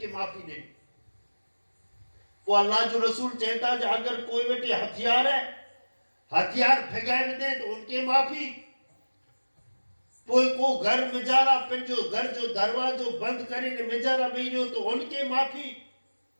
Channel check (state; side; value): inverted; both; correlation -1.00